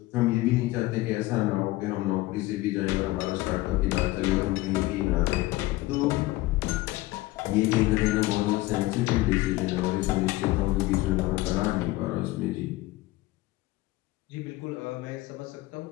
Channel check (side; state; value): right; quieter; 18.9 dB